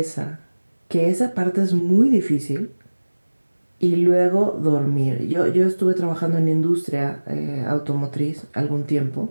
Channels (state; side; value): inverted; both; correlation -1.00